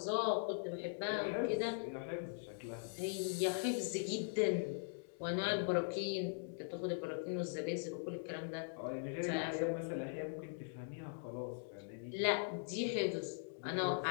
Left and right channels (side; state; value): right; silent; digital silence